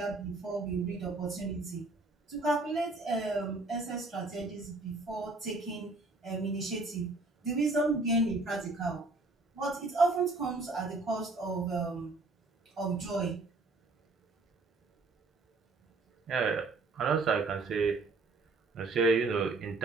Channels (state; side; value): quieter; left; 3.3 dB